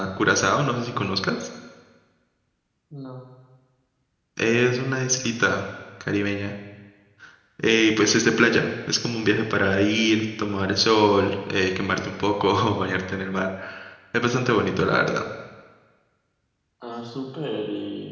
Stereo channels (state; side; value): identical; both; correlation 1.00